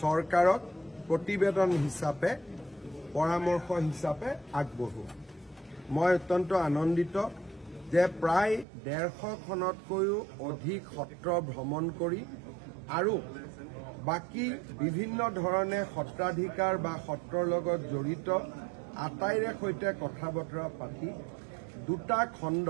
চৰকাৰক প্ৰতিবেদন হিচাপে পৰামৰ্শ হিচাপে আগবঢ়োৱা। মই অত্যন্ত আনন্দিত যে প্ৰায় 150খনতকৈও অধিক সত্ৰ ভ্ৰমণ কৰি আৰু বাকি বিভিন্ন ধৰণে সত্ৰাধিকাৰ বা সত্ৰৰ লগত জড়িত আটাইৰে সৈতে কথা বতৰা পাতি দুটা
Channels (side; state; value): left; drops out; at 8.7 s